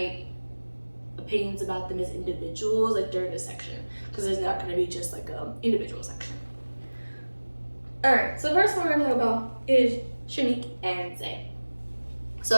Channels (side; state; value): both; inverted; correlation -1.00